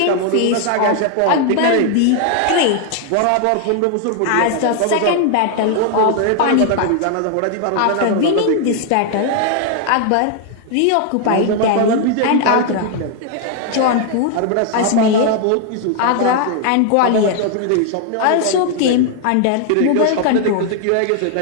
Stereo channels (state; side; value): different; both; correlation 0.00